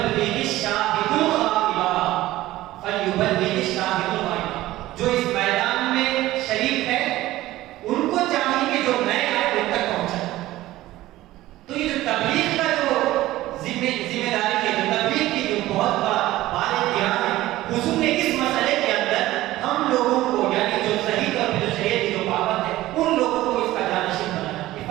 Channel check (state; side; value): quieter; left; 16.3 dB